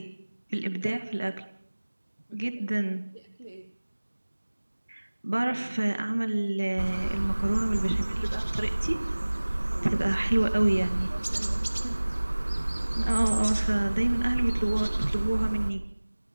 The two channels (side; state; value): both; inverted; correlation -1.00